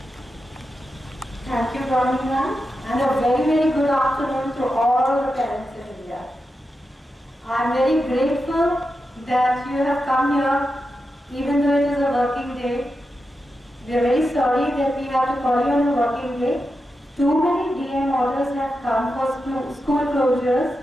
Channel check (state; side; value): normal; both; correlation 0.89